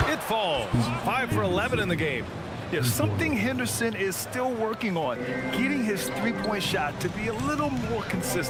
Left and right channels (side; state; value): both; identical; correlation 1.00